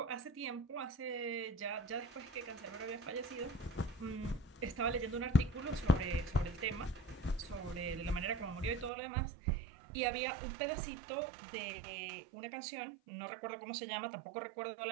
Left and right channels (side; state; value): left; drops out; at 8.9 s